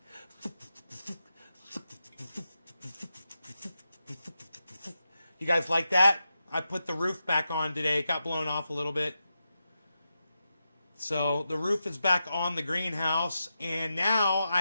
You guys like that? I put the roof back on today. It got blown off a little bit. So the roof is back on the greenhouse, and now I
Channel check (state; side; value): inverted; both; correlation -0.89